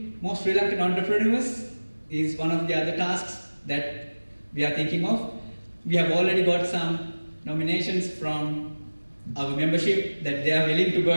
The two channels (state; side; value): inverted; both; correlation -1.00